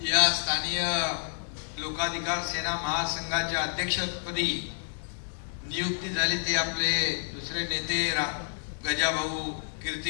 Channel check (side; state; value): right; silent; 58 dB below the other